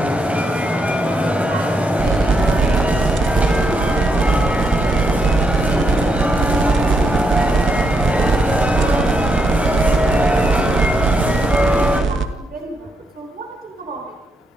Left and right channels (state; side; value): normal; both; correlation 0.81